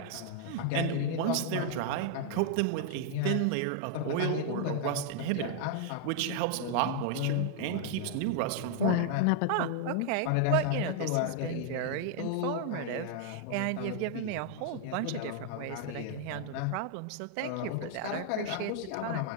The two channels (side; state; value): both; different; correlation 0.00